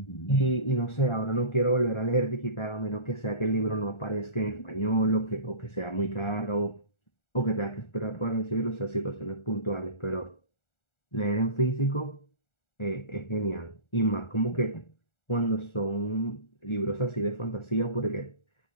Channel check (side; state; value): right; late; 1.4 ms